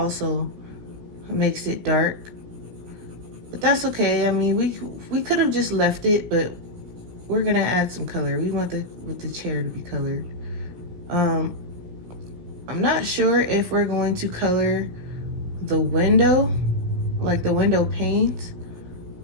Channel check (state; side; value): late; left; 17 ms